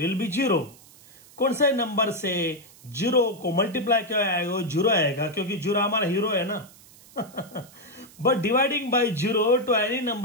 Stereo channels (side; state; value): right; noise; hiss, 24 dB below the sound